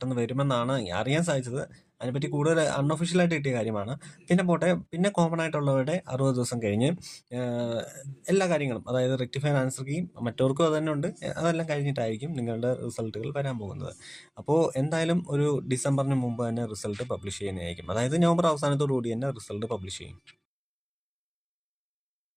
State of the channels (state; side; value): identical; both; correlation 1.00